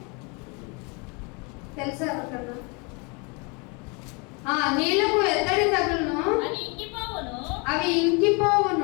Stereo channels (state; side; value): quieter; right; 31.6 dB